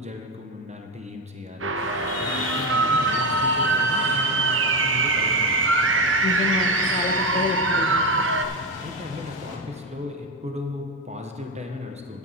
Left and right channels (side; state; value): both; normal; correlation 0.13